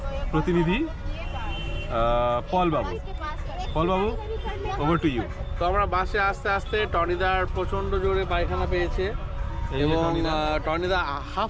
প্রতিনিধি পল বাবু। পল বাবু, ওভার টু ইউ। তো আমরা বাসে আস্তে আস্তে টনিদার প্রচণ্ড জোরে পায়খানা পেয়েছে এই যে এবং টনিদা। টনিদা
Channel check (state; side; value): identical; both; correlation 1.00